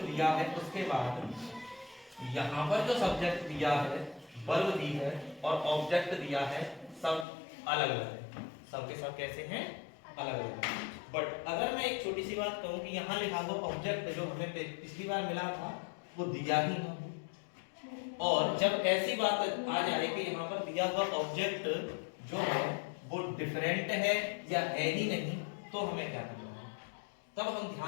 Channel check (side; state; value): right; drops out; at 7.2 s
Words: दिया है उसके बाद यहाँ पर जो सब्जेक्ट दिया है, वर्ब दी है और ऑब्जेक्ट दिया है, सब अलग अलग है। सब के सब कैसे हैं अलग अलग। बट अगर मैं एक छोटी सी बात कहूँ कि यहाँ लिखा हुआ ऑब्जेक्ट जो हमें पिछली बार मिला था वो दिया ही ना हो, और जब ऐसी बात आ जाए कि यहाँ पर दिया हुआ ऑब्जेक्ट जो है वो डिफरेंट है या है ही नहीं, तो हमें क्या करना है। तब हम